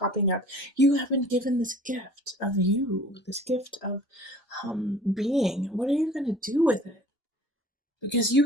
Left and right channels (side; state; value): both; normal; correlation 0.48